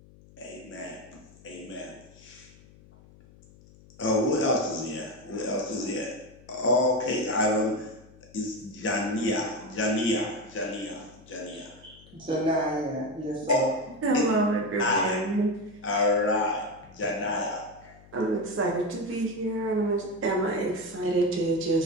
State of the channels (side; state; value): left; noise; hum, 24 dB below the sound